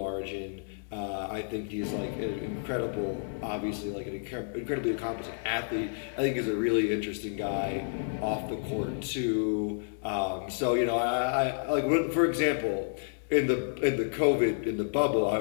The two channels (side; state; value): right; silent; digital silence